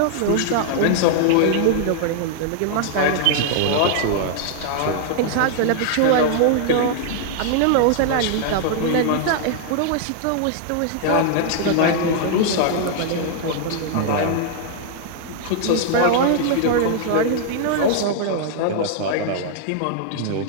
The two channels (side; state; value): both; different; correlation 0.00